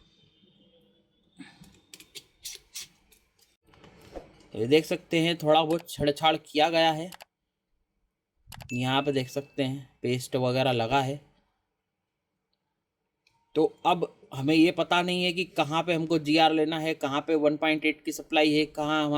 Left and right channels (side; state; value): both; identical; correlation 1.00